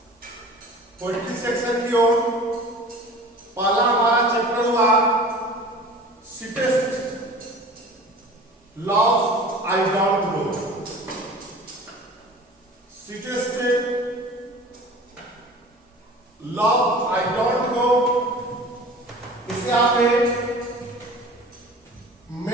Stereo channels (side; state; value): both; normal; correlation 0.41